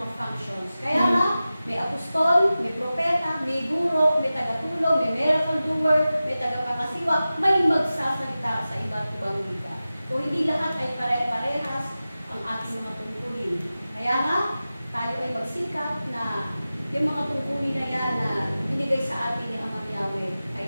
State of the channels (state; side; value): inverted; both; correlation -0.95